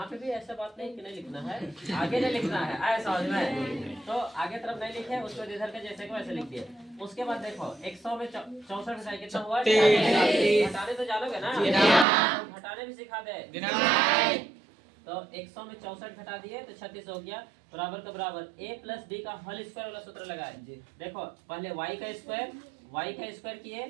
पे भी ऐसा बात नहीं कि नहीं लिखना है, आगे नहीं लिखना है, आए समझ में? तो आगे तरफ नहीं लिखे, उसको इधर के जैसे को ऐसे लिख दिए। उसके बाद देखो 100 में 64 घटाए कितना हुआ? घटाने तो जानोगे ना? घटाने भी सिखा दे। तो 100 में 64 घटा दिए तो 36 हो गया बराबर का बराबर a प्लस बी का होल स्क्वायर वाला सूत्र लगाए। देखो पहले y का स्क्वायर किए,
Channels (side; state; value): left; drops out; at 12.1 s